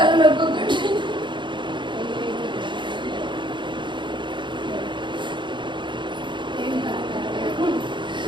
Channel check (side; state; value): left; late; 0.23 ms